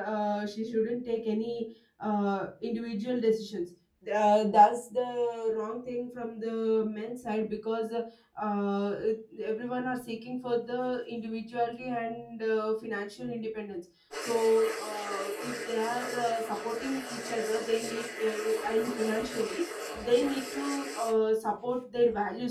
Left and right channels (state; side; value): identical; both; correlation 1.00